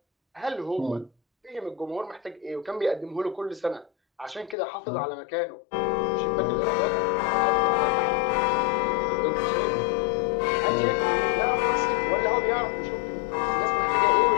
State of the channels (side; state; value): right; drops out; at 4.5 s